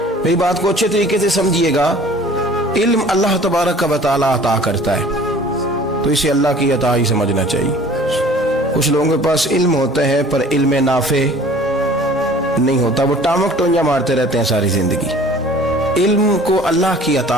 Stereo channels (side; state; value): both; normal; correlation 0.49